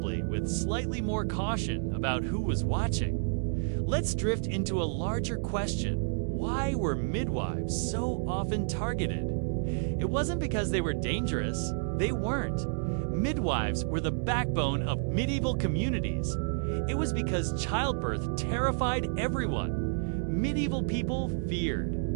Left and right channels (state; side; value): silent; left; digital silence